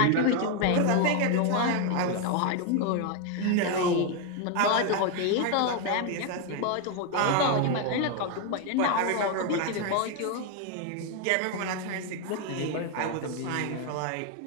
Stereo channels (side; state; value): both; different; correlation 0.01